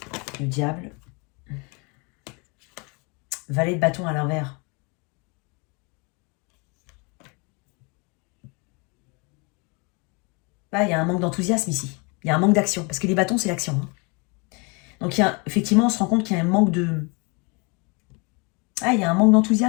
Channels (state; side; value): quieter; right; 31.1 dB